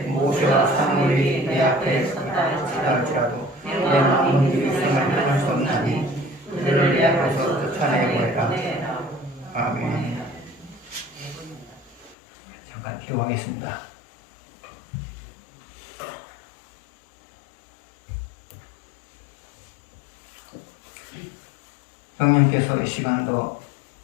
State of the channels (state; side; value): drops out; right; at 12.2 s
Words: 모세와 사무엘이 내 앞에 서다 할지라도 내 마음은 이 백성을 향할 수 없나니 그들을 내 앞에서 쫓아내고해라. 아멘. 잠깐 기도하겠습니다. 성령께서 이 시간도